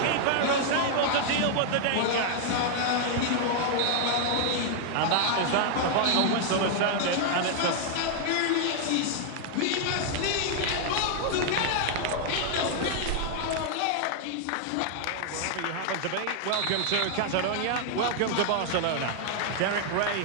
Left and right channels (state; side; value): different; both; correlation 0.00